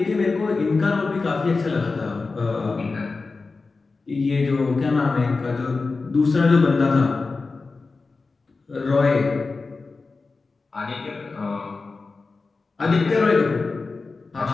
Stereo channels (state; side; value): quieter; right; 4.0 dB